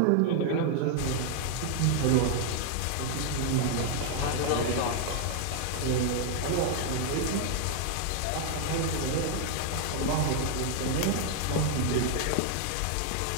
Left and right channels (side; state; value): both; different; correlation 0.00